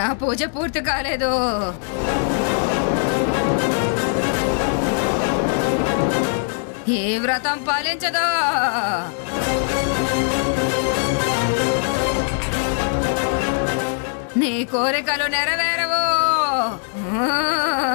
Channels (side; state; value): right; silent; digital silence